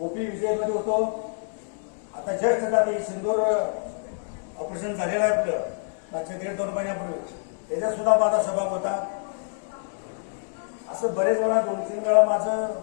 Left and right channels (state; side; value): silent; right; digital silence